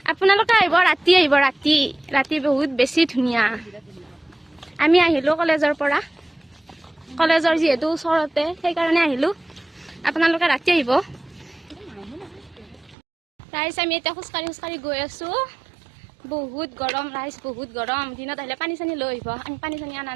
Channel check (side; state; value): left; drops out; at 13.0 s